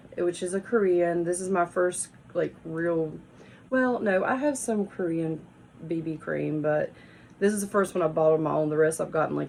which is a Korean. This is my first like real, well, no, I have some Korean BB cream, but this is the first one I bought on my own. The rest I've gotten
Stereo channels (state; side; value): identical; both; correlation 1.00